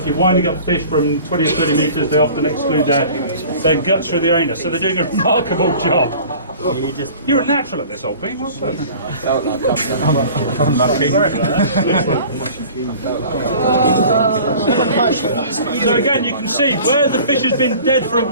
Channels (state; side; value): inverted; both; correlation -0.44